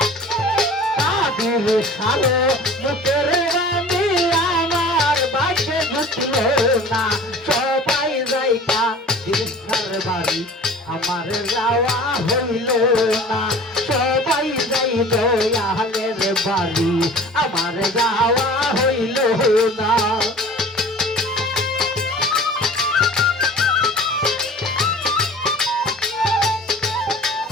কাদির সালো মুখের বাণী আমার বাগে জুটলো না। সবাই যাই কাদির সার বাড়ি আমার যাওয়া হইল না। সবাই যাই দয়ালের বাড়ি আমার যাওয়া হইল না।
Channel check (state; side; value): normal; both; correlation 0.43